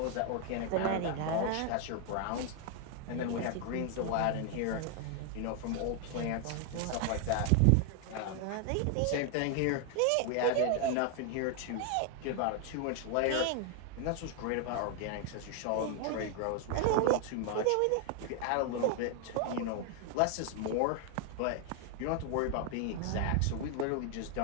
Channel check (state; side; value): different; both; correlation 0.00